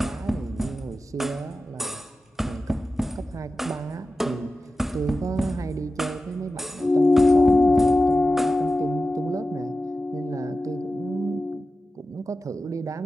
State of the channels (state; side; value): normal; both; correlation 0.93